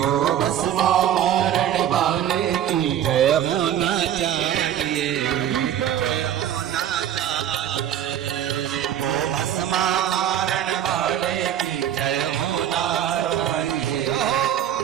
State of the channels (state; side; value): quieter; left; 10.5 dB